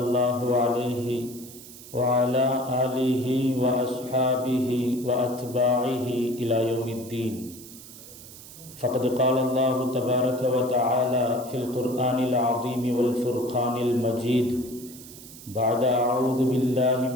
الله عليه وعلى آله وأصحابه وأتباعه إلى يوم الدين. فقد قال الله تبارك وتعالى في القرآن العظيم والفرقان المجيد بعد أعوذ بالله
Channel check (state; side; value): noise; right; hiss, 17 dB below the sound